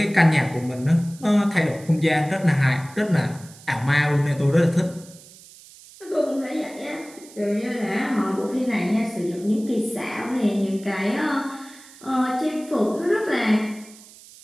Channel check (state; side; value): noise; right; hiss, 21 dB below the sound